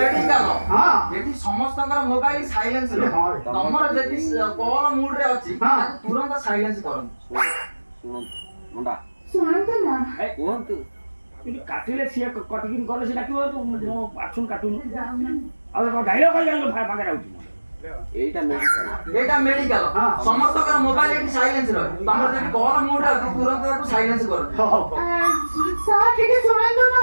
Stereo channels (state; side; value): inverted; both; correlation -1.00